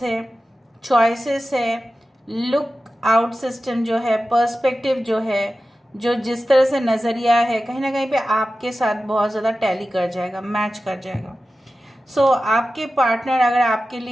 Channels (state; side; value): normal; both; correlation 0.94